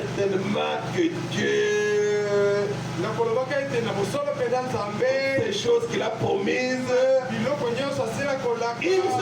que Dieu, nakolobaka ete na bosolo mpenza nzambe ces choses qu'il a promises, biloko nyonso asila kolaka. il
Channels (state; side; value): identical; both; correlation 1.00